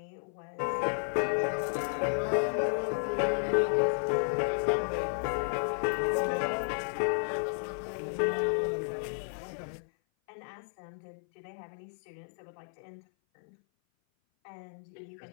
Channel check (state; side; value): silent; right; 56 dB below the other